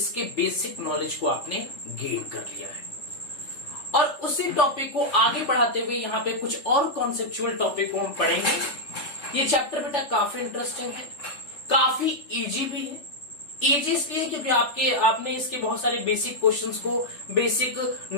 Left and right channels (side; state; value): right; late; 3.4 ms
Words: बेसिक नॉलेज को आपने गेन कर लिया है। और उसी टॉपिक को आगे बढ़ाते हुए यहाँ पे कुछ और कॉन्सेप्चुअल टॉपिक को हम पढ़ेंगे। ये चैप्टर बेटा काफी इंटरेस्टिंग है, काफी इजी भी है। इजी इसलिए क्योंकि आपने इसके बहुत सारे बेसिक क्वेश्चंस को, बेसिक